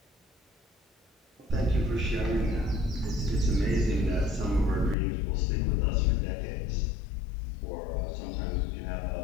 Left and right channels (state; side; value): drops out; right; at 5.0 s